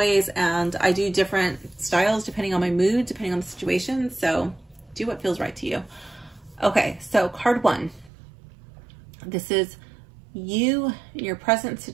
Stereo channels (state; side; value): drops out; left; at 8.1 s